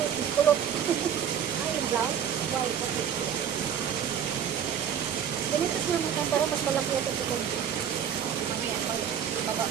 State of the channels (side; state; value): left; quieter; 8.5 dB